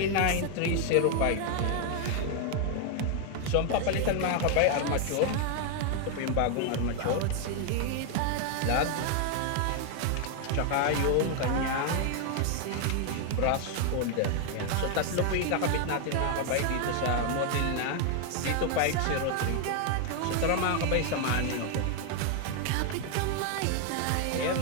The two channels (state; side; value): different; both; correlation 0.00